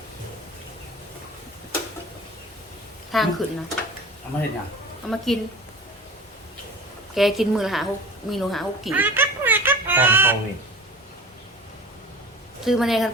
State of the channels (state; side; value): normal; both; correlation 0.38